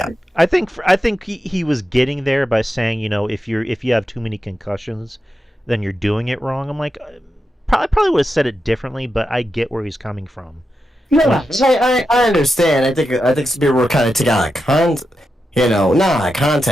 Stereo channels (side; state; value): both; normal; correlation 0.88